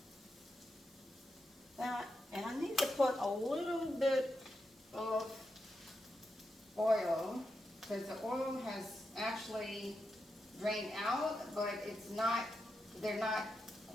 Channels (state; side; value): normal; both; correlation 0.86